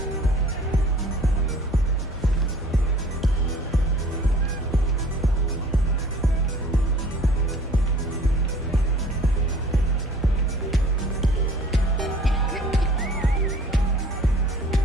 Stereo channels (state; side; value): normal; both; correlation 0.50